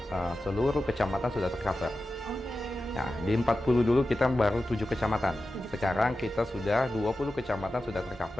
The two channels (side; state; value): both; normal; correlation 0.93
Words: seluruh kecamatan sudah tercover. Nah, di 40 dulu kita baru 7 kecamatan. Sekarang kita sudah 20 kecamatan sudah